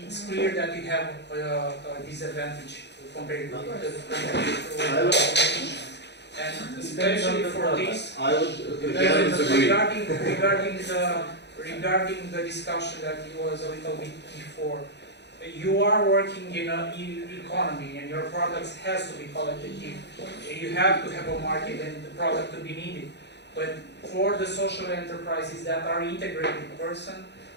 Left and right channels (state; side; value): late; right; 0.50 ms